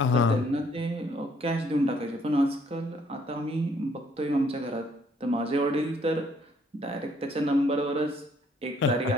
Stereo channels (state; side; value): normal; both; correlation 0.65